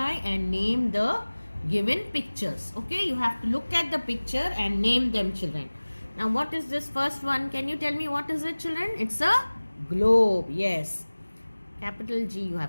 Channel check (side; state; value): both; inverted; correlation -1.00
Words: and name the given pictures. Okay, you have to look at the picture and name them, children. Now what is this first one? Can you tell me what is it, children? It's a globe. Yes. Capital G you